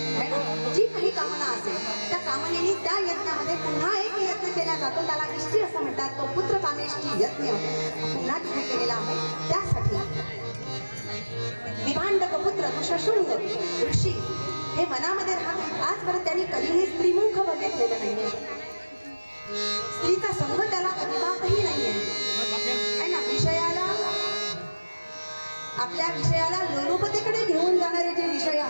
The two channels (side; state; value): both; inverted; correlation -1.00